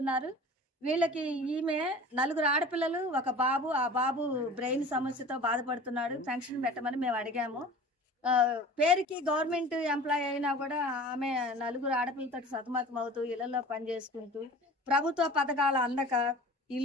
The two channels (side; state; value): both; normal; correlation 0.41